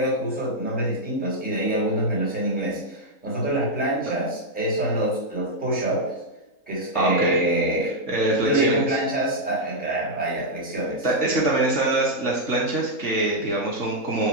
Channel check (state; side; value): late; right; 3.9 ms